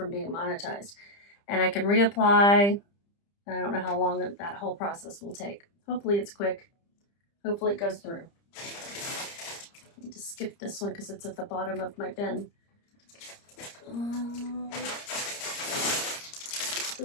being monetized. And I can reapply. I don't know how long that whole process will take. Hopefully it's quick. Hopefully it goes through. I need to skip this one because it's at the bottom of my bin.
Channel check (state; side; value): late; right; 30 ms